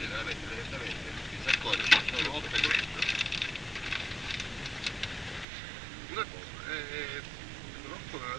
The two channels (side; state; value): left; drops out; at 5.5 s